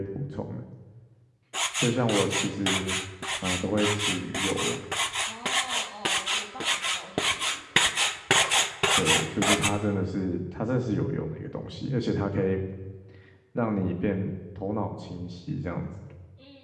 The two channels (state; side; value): identical; both; correlation 1.00